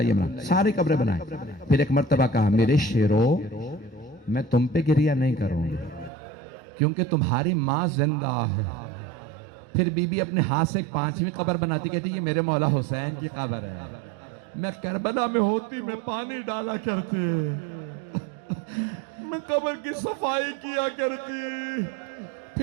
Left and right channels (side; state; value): left; drops out; at 6.1 s